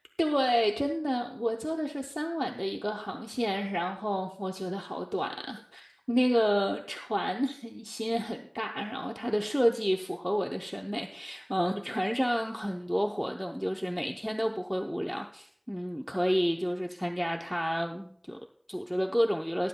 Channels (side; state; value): both; identical; correlation 1.00